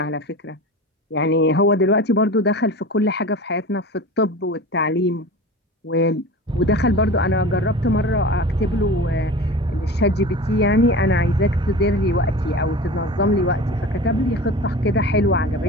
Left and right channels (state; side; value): normal; both; correlation 0.34